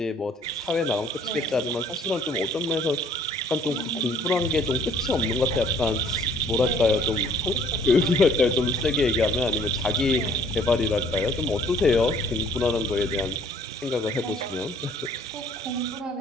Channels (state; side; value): normal; both; correlation 0.58